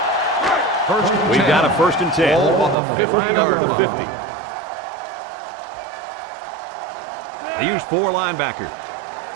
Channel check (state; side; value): drops out; left; at 2.8 s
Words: We've got a 1st and 10. Ball on the They line up 50-yard at the line. 50. They use 4 linebackers.